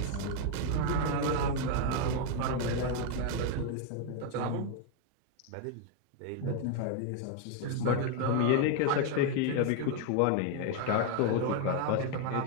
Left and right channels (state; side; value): different; both; correlation 0.00